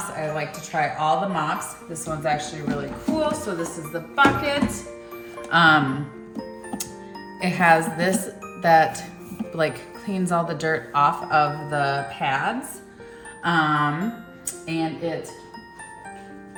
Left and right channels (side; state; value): both; identical; correlation 1.00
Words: I like to try all the mops. This one's actually really cool. So this is the bucket. It has this that like cleans all the dirt off of the pads. And it